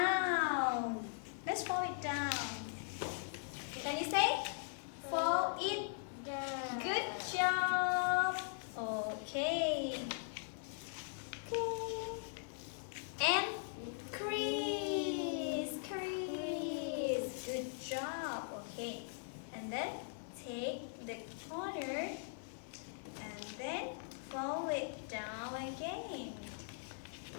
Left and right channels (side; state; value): right; silent; 51 dB below the other